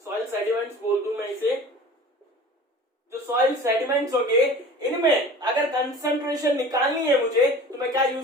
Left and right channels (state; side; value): normal; both; correlation 0.41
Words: सॉइल सेडिमेंट्स बोल दूं मैं इसे, जो सॉइल सेडिमेंट्स होंगे, इनमें अगर कंसंट्रेशन निकालनी है मुझे तो मैं क्या